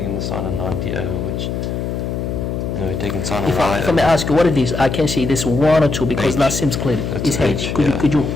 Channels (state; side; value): noise; left; hum, 3 dB below the sound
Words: the sine of 90 over, which. No, we're taking sine of y. If I may ask you, what it is? I can see this 1 or 2 because that seems clear. It's h. Could you